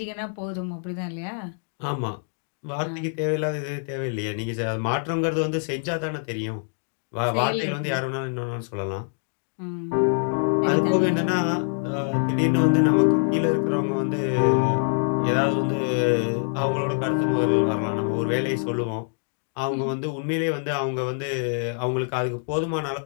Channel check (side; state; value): right; silent; digital silence